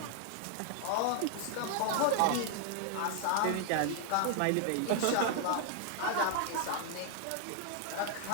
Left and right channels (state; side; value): different; both; correlation 0.00